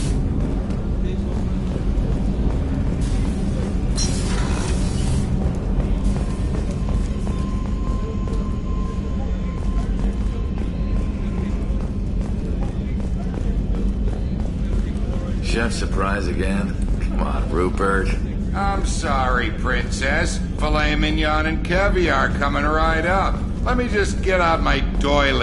Chef surprise again? Come on, Rupert. I'm sorry, Princess. Filet mignon and caviar coming right up. Let me just get out my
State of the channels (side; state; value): both; identical; correlation 1.00